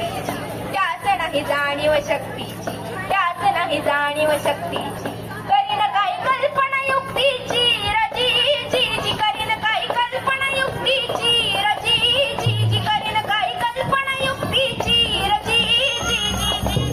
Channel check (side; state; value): both; identical; correlation 1.00